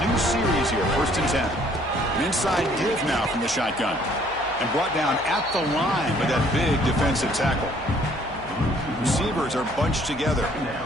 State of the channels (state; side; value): noise; right; hum, 19 dB below the sound